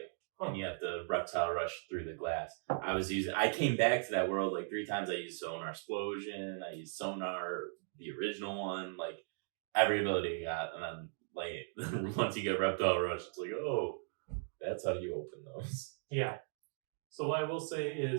Huh. And you have to Reptile Rush through the glass. I came back to that world 3 times. I used Sonar Explosion, I used Sonar, the original one, every ability I got, and then once you get Reptile Rush, it's oh, that's how you open those. Yeah. So what I will say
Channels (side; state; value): left; silent; digital silence